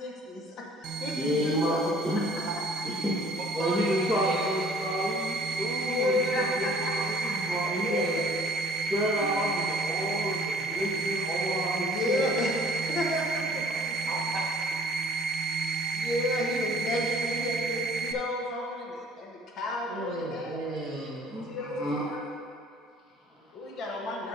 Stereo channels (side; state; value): both; normal; correlation 0.55